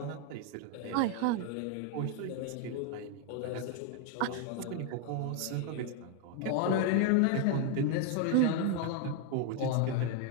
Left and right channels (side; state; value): both; different; correlation 0.01